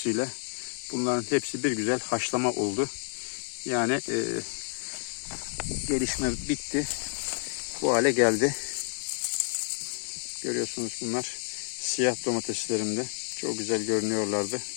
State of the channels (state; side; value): silent; right; digital silence